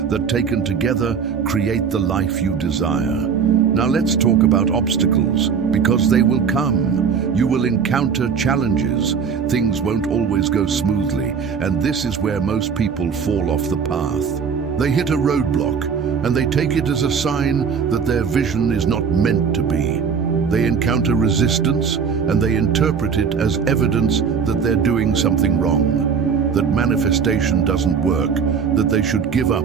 that taken together create the life you desire. Now let's talk about obstacles, because they will come. You will encounter challenges. Things won't always go smoothly, and this is where most people fall off the path. They hit a roadblock, and they take it as a sign that their vision is not meant to be. They encounter resistance, and they interpret it as evidence that they're doing something wrong, that manifestation doesn't work, that they should give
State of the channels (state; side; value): quieter; left; 6.4 dB